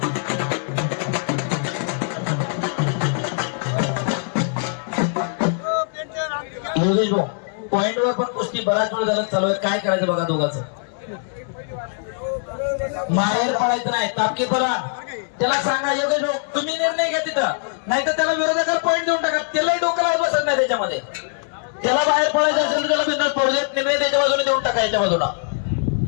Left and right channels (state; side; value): silent; right; 64 dB below the other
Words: पॉइंटवर पण कुस्ती बराच वेळ झाला चालू आहे. काय करायचं बघा दोघांचं. माहेर पडायचं नाही. तापकी बोला त्याला सांगा योगेश भाऊ तुम्ही निर्णय घ्या तिथं, नाही तर त्याला विरोधकाला पॉइंट देऊन टाका. त्यालाही डोक्याला बसत नाही त्याच्यामध्ये. त्याला बाहेर पडायचं असेल तर त्याला बिंदास पडू देत. निर्णय त्याच्या बाजूने देऊन टाका याच्या बाजूला.